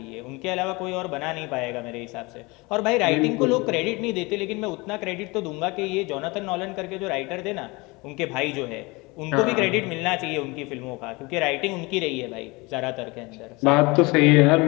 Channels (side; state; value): right; quieter; 24.9 dB